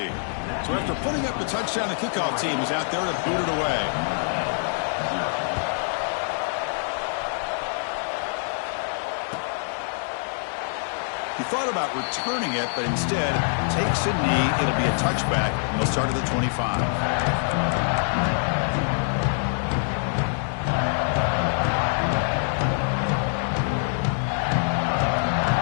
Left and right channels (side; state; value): right; silent; digital silence